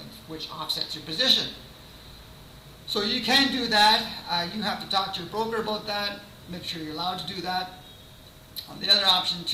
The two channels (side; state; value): both; identical; correlation 1.00